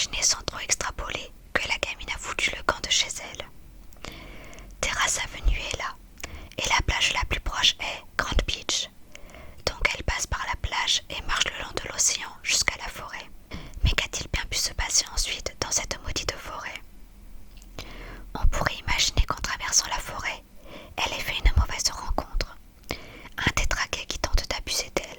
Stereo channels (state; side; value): identical; both; correlation 1.00